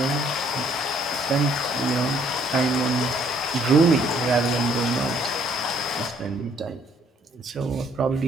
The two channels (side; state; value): both; normal; correlation 0.64